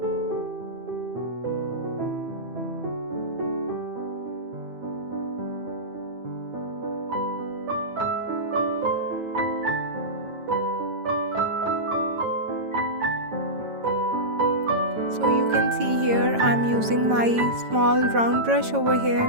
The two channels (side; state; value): left; late; 9.0 ms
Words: can see here, I'm using my small round brush over